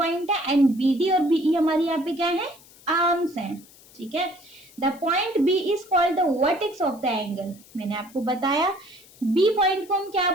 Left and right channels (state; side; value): noise; left; hiss, 24 dB below the sound